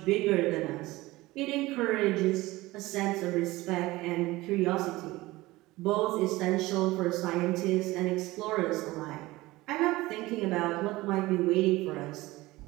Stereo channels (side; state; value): left; quieter; 19.4 dB